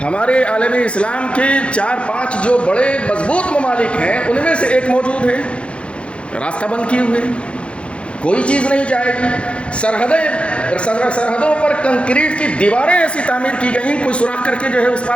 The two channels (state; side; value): late; right; 0.059 ms